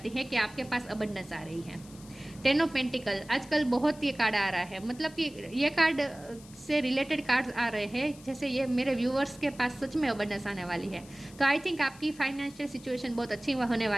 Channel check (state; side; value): noise; left; hiss, 21 dB below the sound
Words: है कि आपके पास अबंडेंस आ रही है। टेन ऑफ पेंटिकल, आजकल बहुत ये कार्ड आ रहा है, मतलब कि ये कार्ड से रिलेटेड कार्ड्स आ रहे हैं। जैसे ये मेरे व्यूअर्स के पास सच में अबंडेंस आने वाली है। तो आई थिंक आपकी फाइनेंशियल सिचुएशन बहुत अच्छी होने